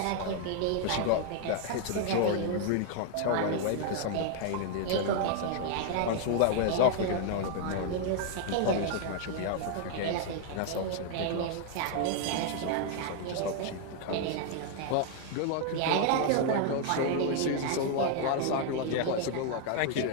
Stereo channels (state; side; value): different; both; correlation 0.00